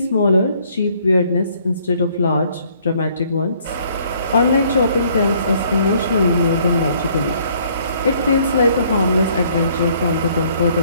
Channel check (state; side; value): inverted; both; correlation -0.63